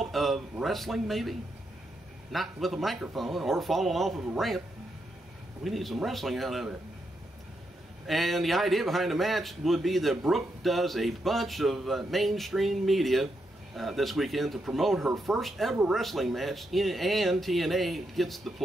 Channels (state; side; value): normal; both; correlation 0.82